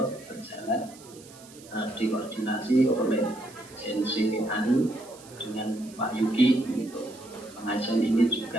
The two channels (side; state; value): right; noise; hiss, 21 dB below the sound